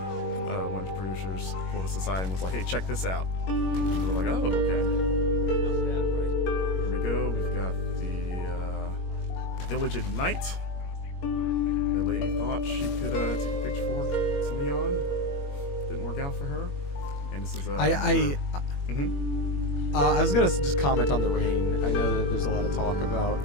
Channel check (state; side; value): late; right; 21 ms